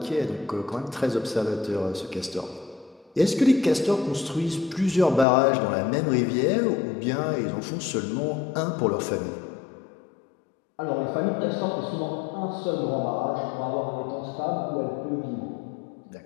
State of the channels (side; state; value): right; drops out; at 5.2 s